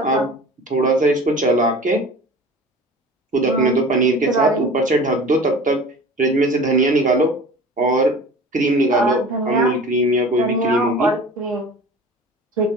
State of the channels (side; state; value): both; normal; correlation 0.40